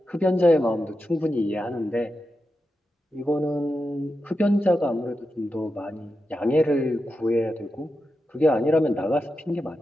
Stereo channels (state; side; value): normal; both; correlation 0.89